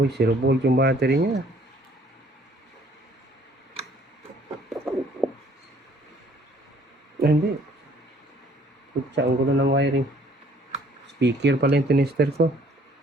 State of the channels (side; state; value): both; normal; correlation 0.59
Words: 0 volt yung battery niya. Ah, hindi. Kutsa, ang gulo ng wiring. Speaker pala yung tinister ko.